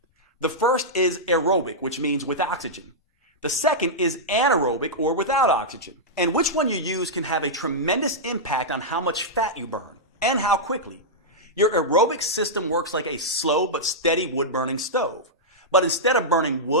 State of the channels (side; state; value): both; normal; correlation -0.09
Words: The first is aerobic, which means with oxygen. The second is anaerobic, or without oxygen. And which one you use can have a tremendous impact on how much fat you burn and how quickly. Your aerobic system works like a slow but steady wood-burning stove. But instead of burning